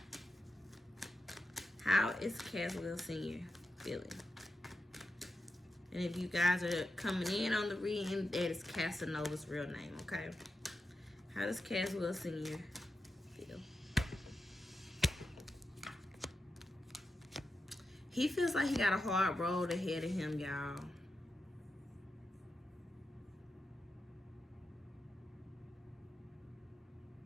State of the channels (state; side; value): normal; both; correlation 0.89